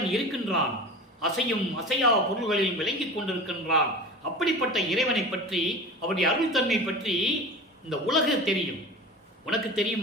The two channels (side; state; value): both; normal; correlation 0.33